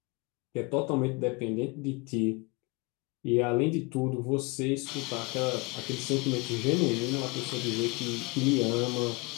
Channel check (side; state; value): right; quieter; 27.7 dB